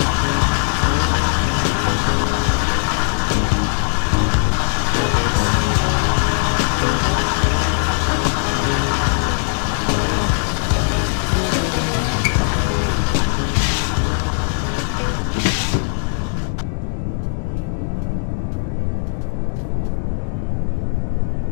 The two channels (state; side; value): silent; right; digital silence